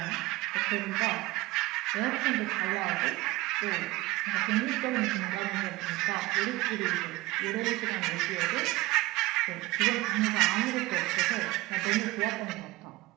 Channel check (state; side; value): quieter; left; 19.9 dB